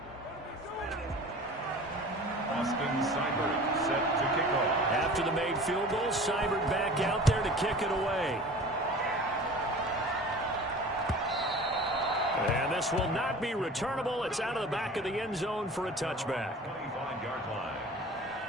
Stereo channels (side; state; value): both; normal; correlation 0.41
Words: Austin Seibert set to kick off. After the made field goal, Seibert back out there to kick it away. And this will not be returnable. It's out of the back of the end zone for a touchback. 25-yard line.